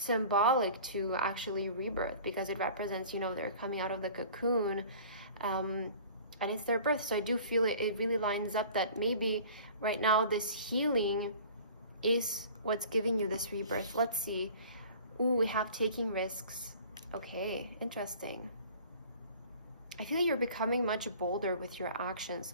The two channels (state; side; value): inverted; both; correlation -0.46